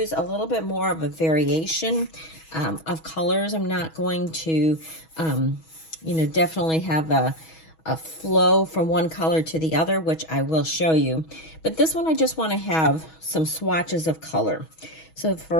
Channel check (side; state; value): right; late; 6.2 ms